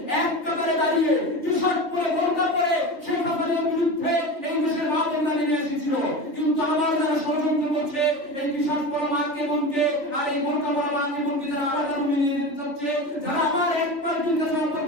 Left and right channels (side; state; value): right; late; 3.4 ms